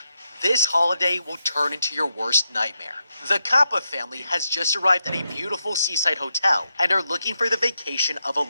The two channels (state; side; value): inverted; both; correlation -0.83